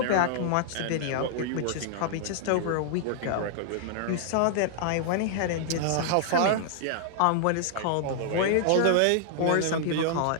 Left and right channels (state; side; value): different; both; correlation -0.01